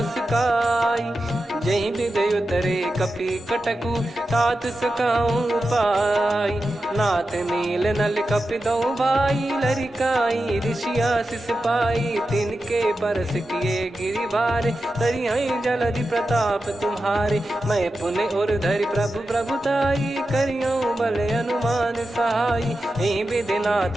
जही विदय उतरे कपि कटकु, तात सकाऊं पाई, नाथ नील नल कपि दो भाई, लरिकाई ऋषि आशीष पाई, तिनके पर किए गिरिबारे, तरियाई जलधि प्रताप तुम्हारे। मैं पुण्य और धरि प्रभु प्रभुताई, करियो बल अनुमान सहाई। यही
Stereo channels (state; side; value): normal; both; correlation 0.91